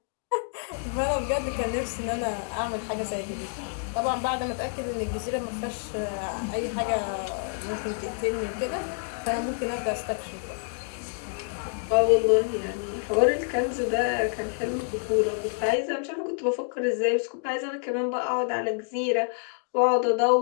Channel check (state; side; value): silent; right; 60 dB below the other